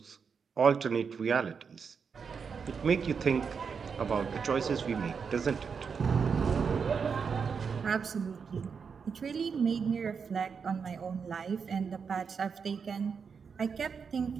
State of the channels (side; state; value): left; quieter; 6.0 dB